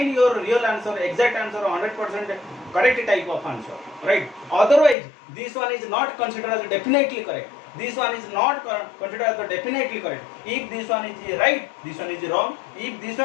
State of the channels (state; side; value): drops out; right; at 5.0 s